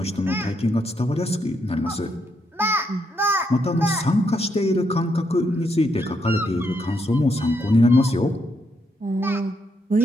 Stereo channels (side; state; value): both; normal; correlation 0.78